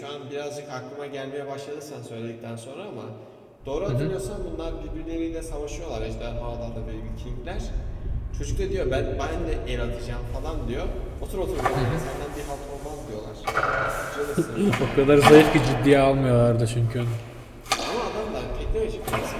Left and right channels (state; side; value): identical; both; correlation 1.00